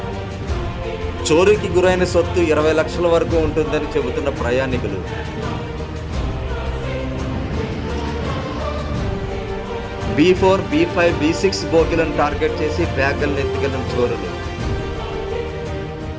చోరీకి గురైన సొత్తు 20 లక్షల వరకు ఉంటుందని చెబుతున్న ప్రయాణికులు. B4, B5, B6 బోగిలను టార్గెట్ చేసి బ్యాగులను ఎత్తుకెళ్లిన చోరులు.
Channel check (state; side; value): identical; both; correlation 1.00